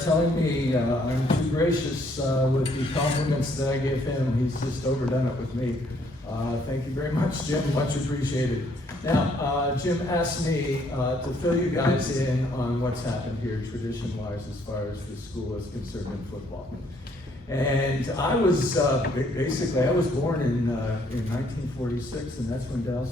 telling me I'm too gracious with the compliments that I give him. He's just overdone it with me. Thank you very much, Jim. Much appreciated. Now, Jim asked me to fill you guys in on what's happened here tradition-wise as far as the school is concerned in football. And I was, basically, I was born in 1946, and that's when Dal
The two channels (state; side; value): normal; both; correlation 0.67